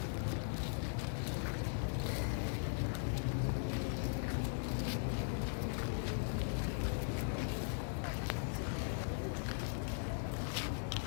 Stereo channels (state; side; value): silent; right; digital silence